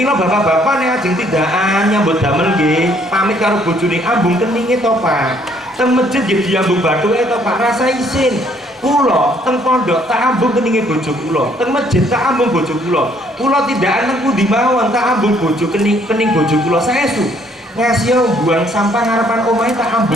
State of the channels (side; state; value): both; normal; correlation 0.65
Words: bapak-bapak nek ajeng tindakan nyambut damel nggih, pamit karo bojone ambung keninge to Pak. Teng masjid nggih diambung bathuke to Pak, rasa isin. Kula teng pondok tak ambung keninge bojo kula, teng masjid tak ambung bojo kula. Kula tindakan teng pundi mawon tak ambung bojo kening bojo kula saestu. Ngasih buang sampah ngarepan omahe tak